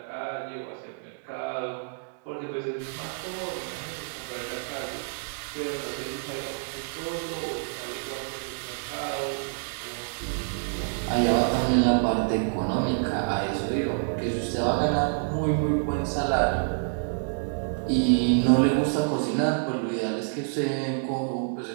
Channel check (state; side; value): silent; left; digital silence